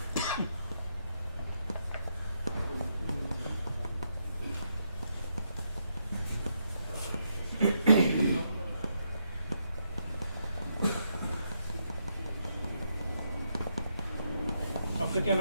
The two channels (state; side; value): inverted; both; correlation -0.80